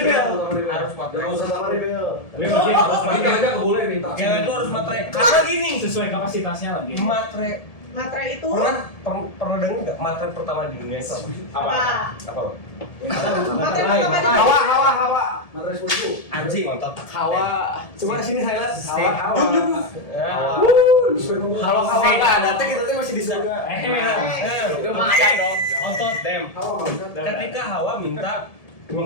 harus matre. Terutama Rebel. Ini mungkin harus Cewek itu harus matre. Karena gini, sesuai kapasitasnya lagi. matre Matre itu pernah dengar nggak matre pertama di dunia itu apa? apa? Matre pertama di Hawa. Matre 10. Anjing nonton. Hawa. Coba sini highlight. Hawa. Kalau Hawa nggak ada, kita masih di surga. Lumayan dong. otot dem. Ketika Hawa minta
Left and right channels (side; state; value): right; late; 1.7 ms